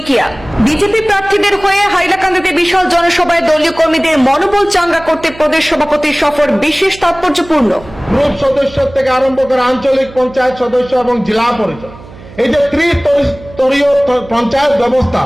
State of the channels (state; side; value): noise; right; hum, 19 dB below the sound